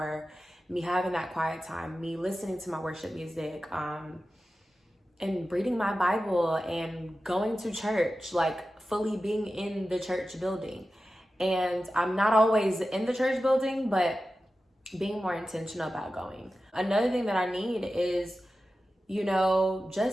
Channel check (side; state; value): both; normal; correlation 0.93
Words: me having that quiet time, me listening to my worship music, and reading my Bible and going to church, like fully being in the church building. And I'm not always in the church building, but being more intentional about going. Another thing that I need is, you know,